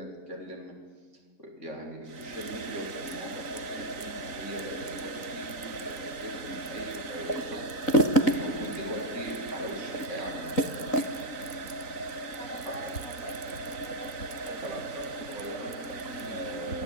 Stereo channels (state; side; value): late; right; 4.0 ms